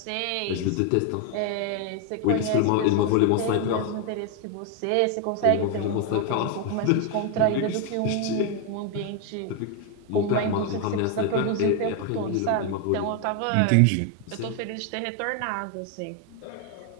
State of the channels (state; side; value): different; both; correlation 0.01